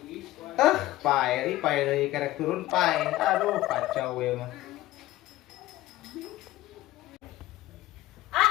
Pae deui kerek turun pae. Aduh, kacau we mah.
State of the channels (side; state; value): right; quieter; 16.4 dB